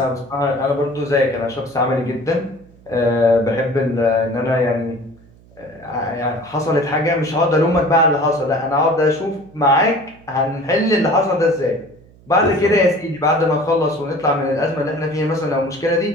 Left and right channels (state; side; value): noise; right; hum, 26 dB below the sound